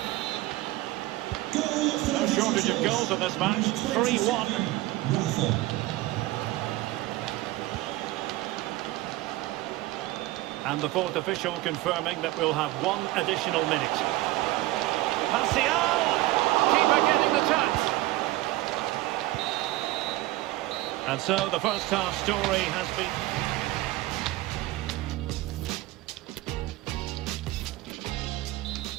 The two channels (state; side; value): quieter; left; 17.8 dB